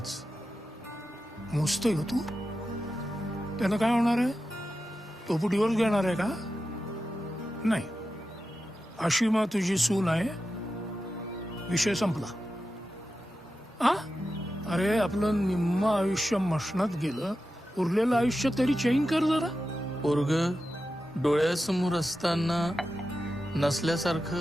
मोजतोय तू. त्यानं काय होणार आहे? तो डिवोर्स घेणार आहे का? नाही, आशिमा तुझी सून आहे, विषय संपला. हा, अरे आपलं निम्म आयुष्य मशनात गेलं, उरलेलं आयुष्य तरी चेंज कर जरा. पोरग डोळ्यासमोर असताना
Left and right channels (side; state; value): both; normal; correlation 0.91